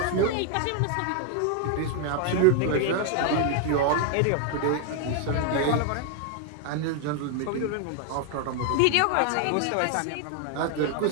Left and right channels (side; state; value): both; different; correlation 0.00